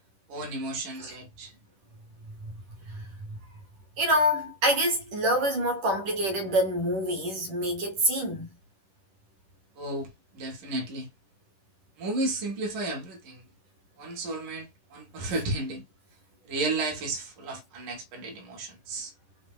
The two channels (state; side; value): late; left; 10 ms